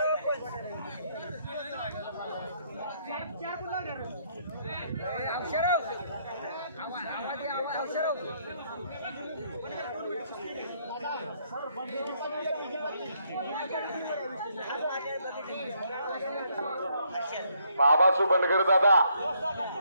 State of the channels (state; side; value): inverted; both; correlation -0.71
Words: बाबासू बनगर दादा